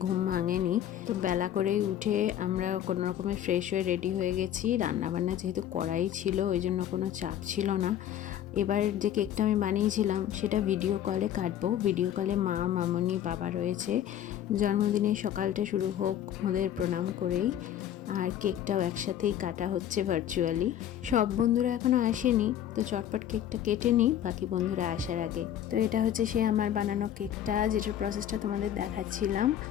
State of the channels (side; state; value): right; quieter; 10.9 dB